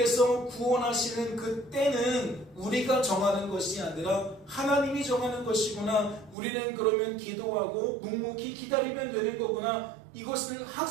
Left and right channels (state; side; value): drops out; left; at 6.4 s